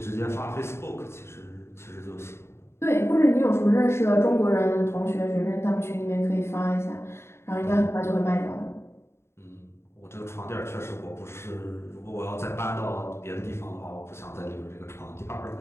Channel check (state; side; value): late; right; 0.12 ms